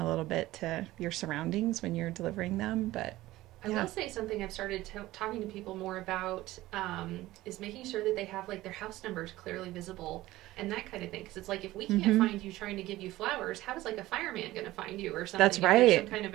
little bit to your surroundings when you're delivering them. But I will say something I've started talking to people more about is making sure that they have like their house numbers clearly visible and that kind of thing. Because it's like, if we can't find you trying to give you flowers, how is like a fireman going to find you or something? That's right. If there's some kind of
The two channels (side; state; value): left; quieter; 17.0 dB